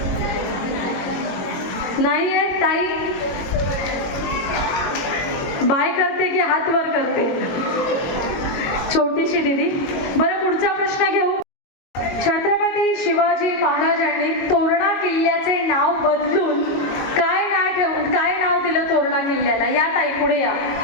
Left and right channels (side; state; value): right; late; 22 ms